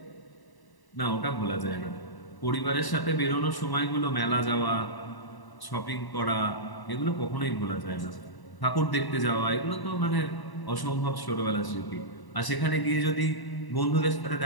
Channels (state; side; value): late; right; 1.0 ms